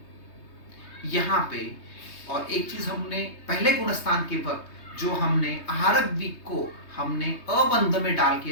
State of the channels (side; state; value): right; late; 3.2 ms